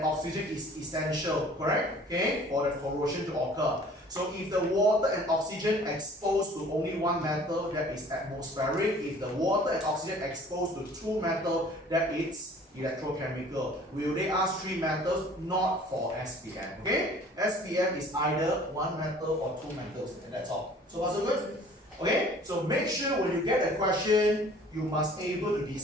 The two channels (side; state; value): both; normal; correlation 0.50